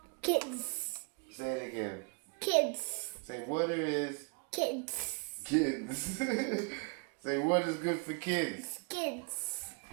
kids. Say it again. Kids. Say water is... Kids. Kids. Say water is good for kids. Kids.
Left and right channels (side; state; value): left; quieter; 35.2 dB